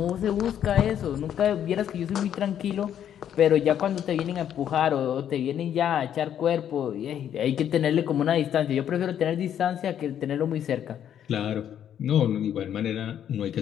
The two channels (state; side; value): quieter; right; 9.8 dB